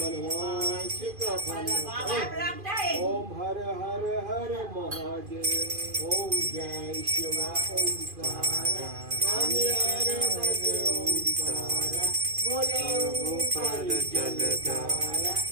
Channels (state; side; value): late; left; 2.4 ms